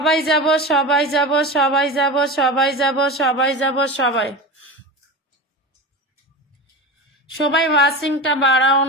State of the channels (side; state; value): both; normal; correlation 0.26